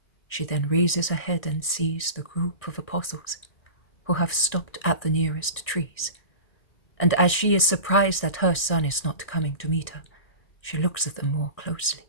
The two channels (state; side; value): late; right; 1.6 ms